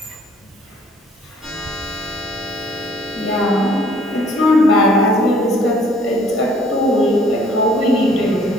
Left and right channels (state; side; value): normal; both; correlation 0.58